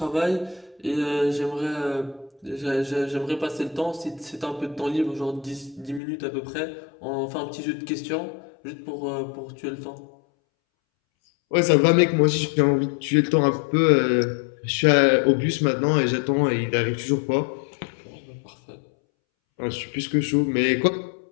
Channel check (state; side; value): drops out; right; at 6.0 s